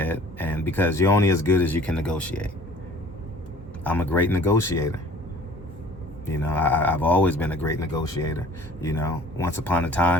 And because you're only as good as you can negotiate. I'm a great negotiator. You know, I've always been a great negotiator. You know, once upon a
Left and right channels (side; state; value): both; normal; correlation 0.51